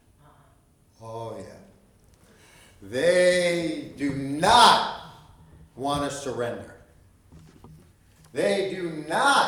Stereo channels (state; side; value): identical; both; correlation 1.00